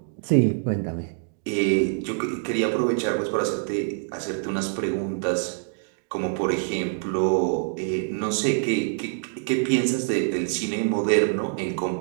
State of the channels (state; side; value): silent; left; digital silence